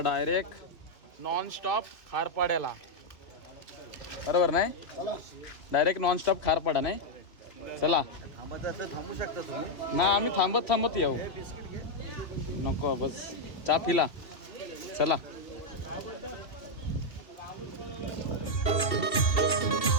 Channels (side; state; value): right; late; 2.7 ms